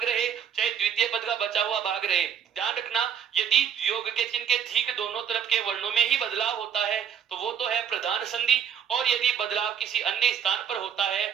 रहे चाहे द्वितीय पद का बचा हुआ भाग रहे, ध्यान रखना, यदि योग के चिन्ह के ठीक दोनों तरफ के वर्णों में ही बदलाव होता है तो वो तो है प्रधान संधि। और यदि बदलाव किसी अन्य स्थान पर होता है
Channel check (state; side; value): quieter; left; 8.2 dB